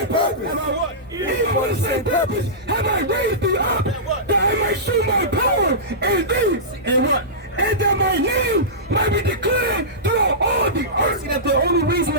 purpose. Have I what? Even for the same purpose. Have I raised thee up that I might show my power in thee. And what? And that my name might be declared throughout all the earth. See, that the only reason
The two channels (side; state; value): both; normal; correlation -0.18